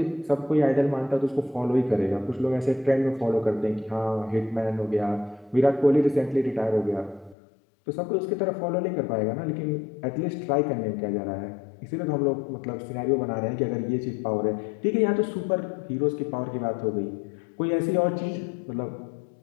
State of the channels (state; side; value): drops out; right; at 7.4 s